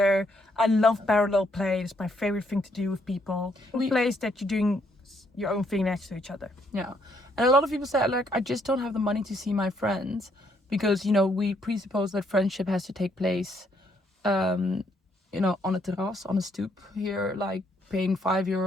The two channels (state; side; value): normal; both; correlation 0.71